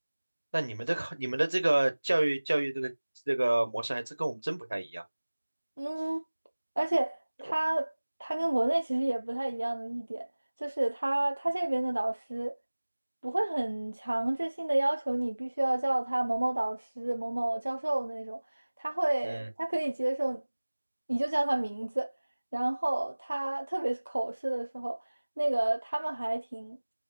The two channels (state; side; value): inverted; both; correlation -1.00